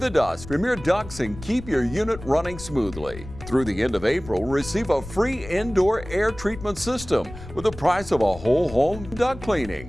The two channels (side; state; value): left; noise; rumble, 14 dB below the sound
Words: dust from your ducts and keep your unit running smoothly. Through the end of April, receive a free indoor air treatment system with the price of a whole home duct